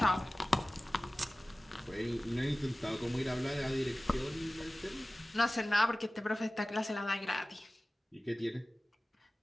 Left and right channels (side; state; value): both; normal; correlation 0.97